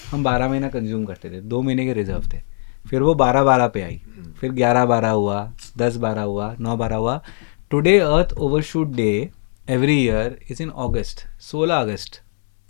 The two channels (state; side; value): silent; right; 63 dB below the other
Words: हम 12 महीना कंज्यूम करते थे, 2 महीने के रिजर्व थे. फिर वो 12-12 पे आई, फिर 11-12 हुआ, 10-12 हुआ, 9-12 हुआ. टुडे अर्थ overshoot day every year is in अगस्त, 16 अगस्त.